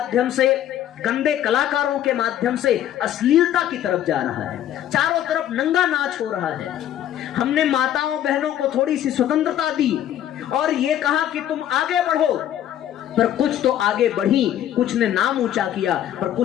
से, गंदे कलाकारों के माध्यम से अश्लीलता की तरफ जा रहा है। चारों तरफ नंगा नाच हो रहा है। हमने माताओं बहनों को थोड़ी सी स्वतंत्रता दी और ये कहा कि तुम आगे बढ़ो, पर कुछ तो आगे बढ़ी, कुछ ने नाम ऊंचा किया, पर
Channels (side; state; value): right; quieter; 11.3 dB